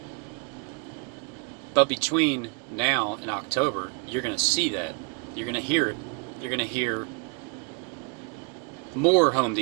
But between now and October, you're going to see that. You're going to hear it. You're going to hear more Home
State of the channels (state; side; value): quieter; left; 34.6 dB